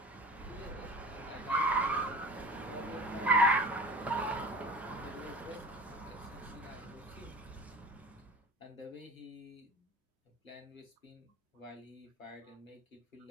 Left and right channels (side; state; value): both; normal; correlation 0.39